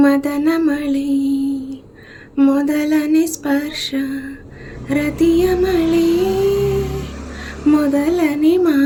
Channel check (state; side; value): identical; both; correlation 1.00